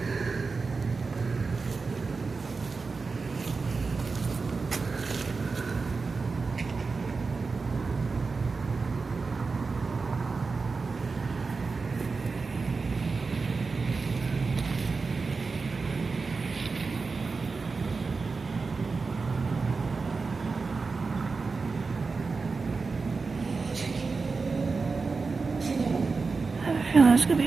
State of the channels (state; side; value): quieter; left; 4.4 dB